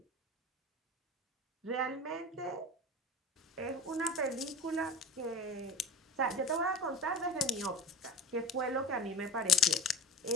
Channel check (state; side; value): normal; both; correlation 0.33